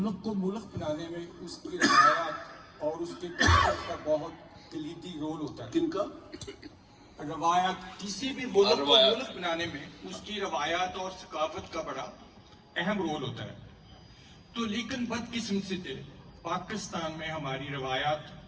को मुल्क बनाने में उसकी रवायात और उसके कल्चर का बहुत कलीदी रोल होता है। किनका? रवायात, किसी भी मुल्क को मुल्क बनाने में उसकी रवायात और सकाफत का बड़ा अहम रोल होता है। तो लेकिन बदकिस्मती से पाकिस्तान में हमारी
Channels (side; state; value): both; identical; correlation 1.00